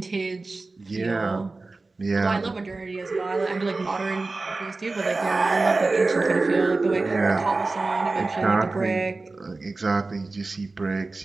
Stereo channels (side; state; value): left; quieter; 3.5 dB